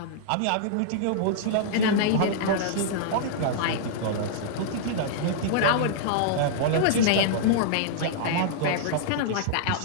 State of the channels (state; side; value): different; both; correlation -0.02